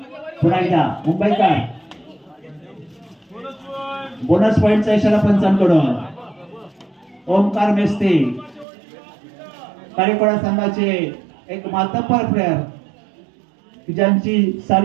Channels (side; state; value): left; drops out; at 8.7 s